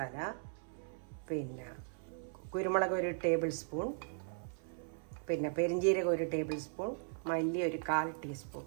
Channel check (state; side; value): silent; left; 52 dB below the other